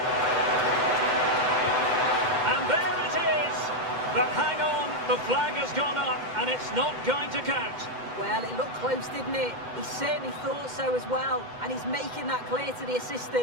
And there it is! But hang on, the flag has gone up, and it's not going to count. Well, it looked close, didn't it? He certainly thought so as well, and he's making that clear to the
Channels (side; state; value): left; late; 2.1 ms